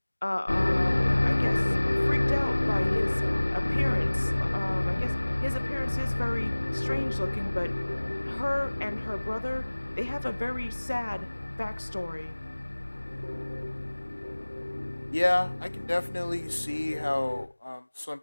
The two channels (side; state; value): both; inverted; correlation -1.00